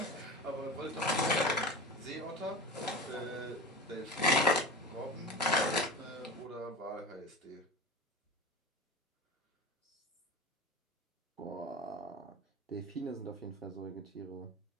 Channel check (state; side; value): normal; both; correlation 0.30